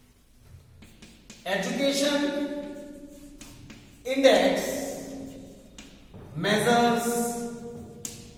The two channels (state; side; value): identical; both; correlation 1.00